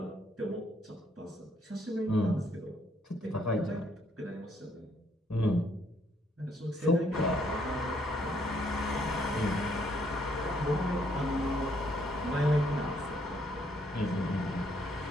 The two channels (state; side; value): normal; both; correlation 0.69